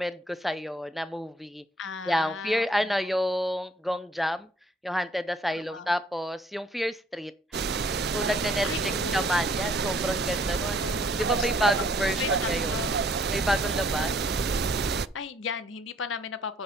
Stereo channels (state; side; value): normal; both; correlation 0.63